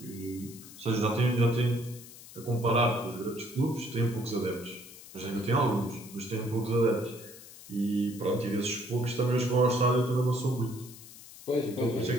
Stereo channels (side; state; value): left; noise; hiss, 17 dB below the sound